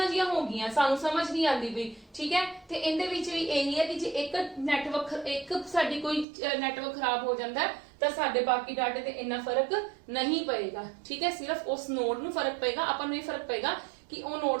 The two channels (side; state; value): left; drops out; at 6.2 s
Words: ਜੀਆਂ ਹੋ ਗਈਆਂ, ਸਾਨੂੰ ਸਮਝ ਨਹੀਂ ਆਉਂਦੀ ਵੀ, ਠੀਕ ਹੈ। ਤੇ ਇਹਦੇ ਵਿੱਚ ਵੀ ਇਹੀ ਹੈ ਕਿ ਜੇ ਇੱਕ ਸਾਡੀ ਕੋਈ ਨੈਟਵਰਕ ਖਰਾਬ ਹੋ ਜਾਂਦਾ ਤਾਂ ਸਾਡੇ ਬਾਕੀ ਡਾਟੇ ਤੇ ਇੰਨਾ ਫਰਕ ਨਹੀਂ ਪਏਗਾ, ਠੀਕ ਹੈ। ਸਿਰਫ ਉਸ ਨੋਡ ਨੂੰ ਫਰਕ ਪਏਗਾ, ਆਪਾਂ ਨੂੰ ਇਹ ਫਰਕ ਪਏਗਾ ਕਿ ਉਹ